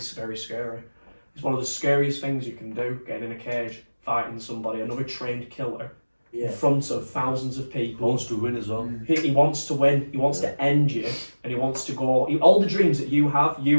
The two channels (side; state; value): both; inverted; correlation -1.00